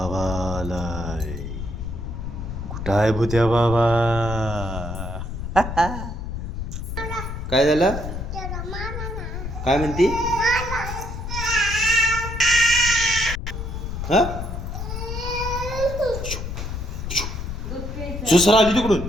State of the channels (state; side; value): noise; left; rumble, 6 dB below the sound